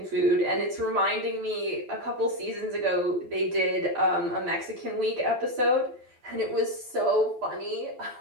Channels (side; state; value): left; late; 12 ms